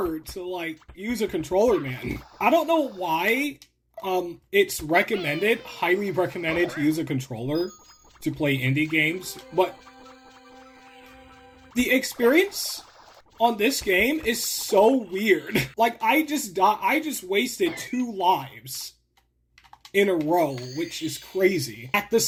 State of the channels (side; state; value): both; identical; correlation 1.00